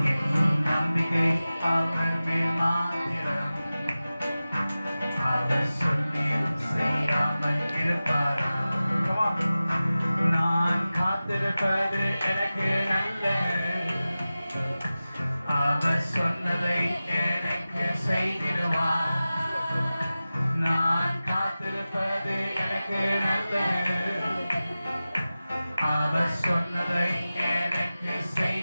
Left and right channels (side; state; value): both; inverted; correlation -0.96